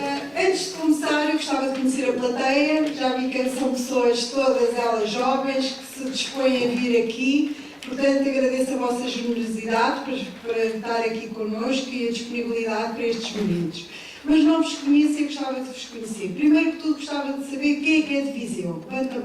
Antes de começar, eu gostava de conhecer a plateia. Já vi que são pessoas, todas elas jovens, que se dispõem a vir aqui. Portanto, agradeço a vossa generosidade para estar aqui connosco e a disponibilidade para estes momentos. Mas não vos conheço e gostava de vos conhecer. Primeiro que tudo, gostava de saber quem é de Viseu. Levanta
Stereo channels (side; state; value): both; identical; correlation 1.00